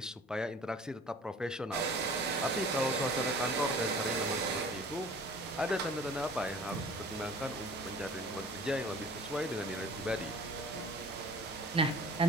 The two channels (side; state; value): both; normal; correlation 0.47